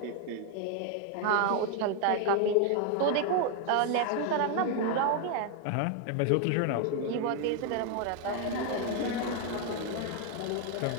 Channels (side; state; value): both; different; correlation 0.01